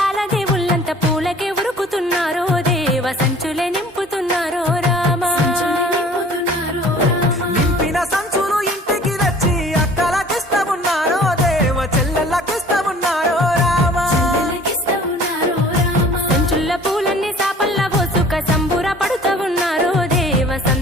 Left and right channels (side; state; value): both; normal; correlation 0.49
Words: పూలకే ఉరుకుతున్నారో దేవ సంచులే నింపుతున్నారో రామా నింపిన సంచులు ఇంటికి తెచ్చి అక్కలకిస్తమున్నారో దేవ చెల్లెళ్ళకిస్తమున్నారో రామా సంచుల్ల పూలన్నీ సాపల్లా పోసుక సంబుర పడుతూ ఉన్నారో దేవ